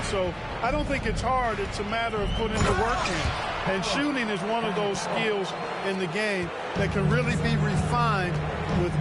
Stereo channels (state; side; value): identical; both; correlation 1.00